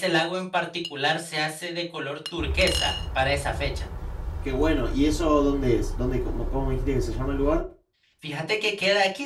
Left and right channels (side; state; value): both; identical; correlation 1.00